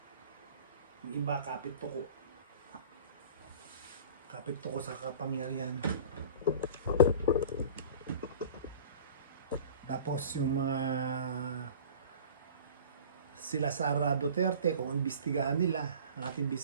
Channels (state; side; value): inverted; both; correlation -0.42